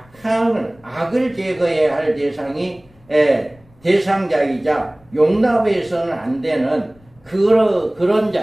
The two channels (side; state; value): left; noise; rumble, 30 dB below the sound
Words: 악을 제거해야 할 대상자이자 용납해서는 안 되는 그런